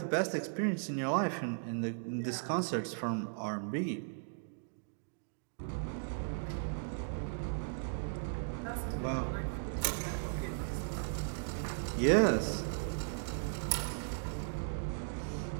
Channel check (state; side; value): silent; left; digital silence